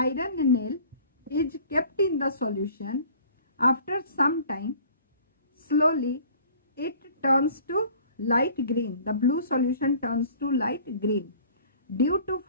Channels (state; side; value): inverted; both; correlation -0.50